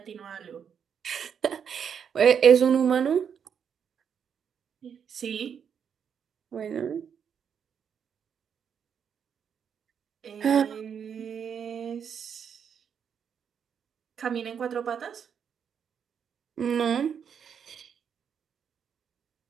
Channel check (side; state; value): left; quieter; 7.5 dB